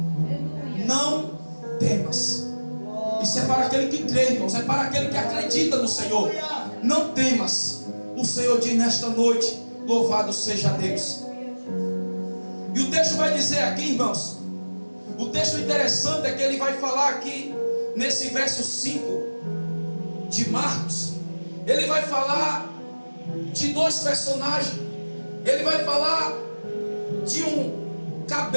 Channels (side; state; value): both; inverted; correlation -1.00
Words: Não temas. Isso é para aquele que crê, irmãos. É para aquele que acredita no Senhor. Não temas. O Senhor diz nesta noite: louvado seja Deus. E o texto vai dizer aqui, irmãos, o texto interessante é que ele vai falar aqui nesse verso 5 de Marcos. Ele vai falar de dois personagens. Ele vai falar de um